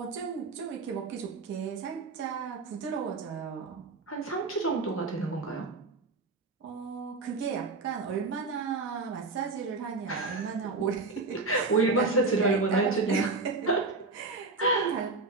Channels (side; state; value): left; quieter; 3.7 dB